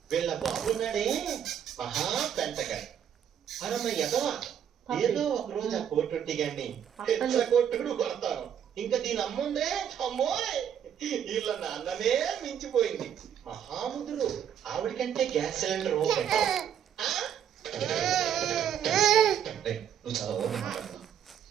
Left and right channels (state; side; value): quieter; left; 9.0 dB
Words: వీళ్ళ బాబున్నాడే మహా పెంటగా. అరమ్మ ఎదవా, ఏదో ఒక రోజు ఆ కోటొట్టి గాని కొట్టుడు కొడతాను. ఇంకా దీని అమ్ముందే అమ్మోయ్, వీళ్ళ నాన్ననే మించిపోయింది. మహాముదురు ఆవిడికంటే గ్యాస్ సిలిండర్ నువ్వు చాలా ఓపెన్ మాట్లాడుతున్నావు.